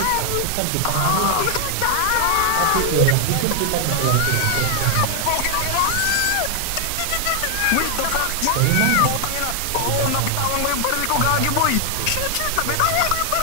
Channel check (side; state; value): both; different; correlation 0.00